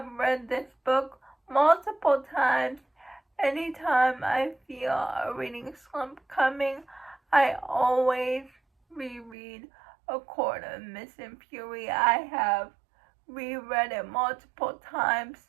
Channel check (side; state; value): left; drops out; at 9.3 s